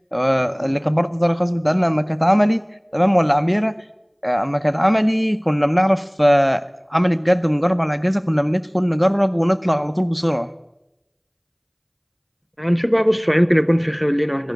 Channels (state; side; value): identical; both; correlation 1.00